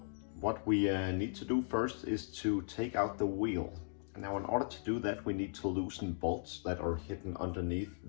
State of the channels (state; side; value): silent; right; digital silence